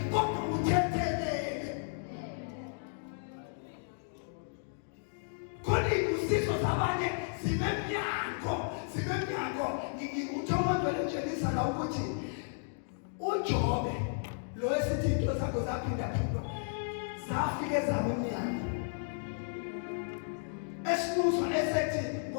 kodwa uthethelele khona izifiso zabanye zinemnyango uThomas njenisa la ukuthi uJobe lo esithi into zakho zaphinda zafike zama umnyango esibuzwa esethi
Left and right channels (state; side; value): silent; right; digital silence